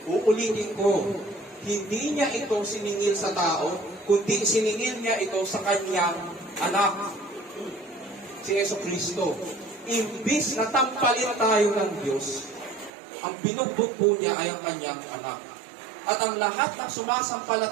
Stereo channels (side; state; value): left; drops out; at 12.9 s